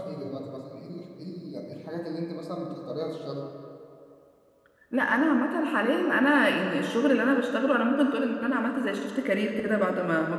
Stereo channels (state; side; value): identical; both; correlation 1.00